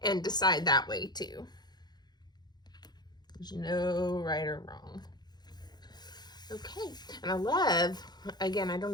and decide that way too. There's no right or wrong. Okay, and I love, again, I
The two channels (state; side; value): late; right; 0.20 ms